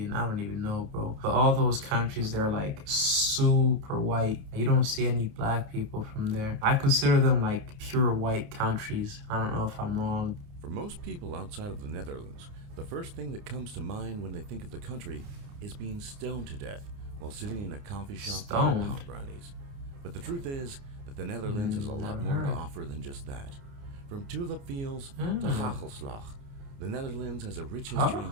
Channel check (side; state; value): left; late; 29 ms